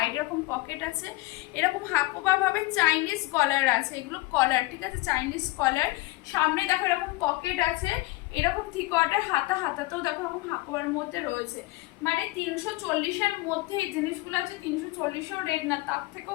এরকম পকেট আছে, এরকম হাকোবা ভাবে চাইনিজ কলার আছে, এগুলো কলার, ঠিক আছে? চাইনিজ কলার, সামনে দেখো এরকম পকেট আছে, এরকম 3/4 হাতাতেও দেখো এরকম হাকোবার মধ্যে রয়েছে, মানে 340-এর মধ্যে এই জিনিসগুলো আছে। 340-ও রেট না, তার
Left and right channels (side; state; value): right; quieter; 20.8 dB